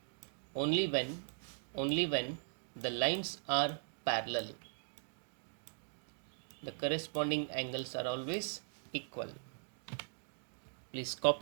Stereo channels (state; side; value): silent; left; digital silence